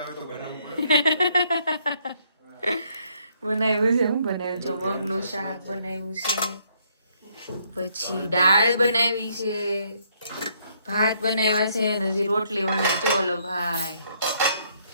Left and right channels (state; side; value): inverted; both; correlation -0.70